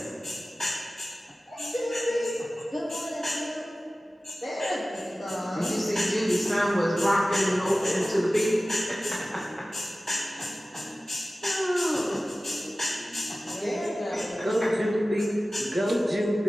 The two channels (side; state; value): both; normal; correlation 0.96